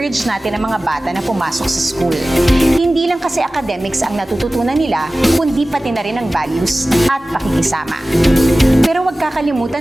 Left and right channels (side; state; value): both; normal; correlation 0.97